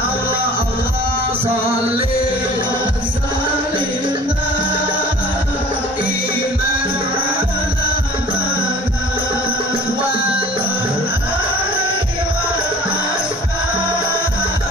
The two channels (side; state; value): both; normal; correlation 0.46